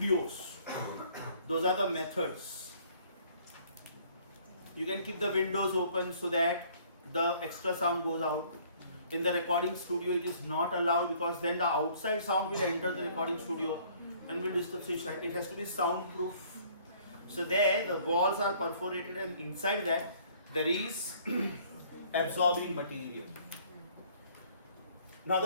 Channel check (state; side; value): inverted; both; correlation -0.58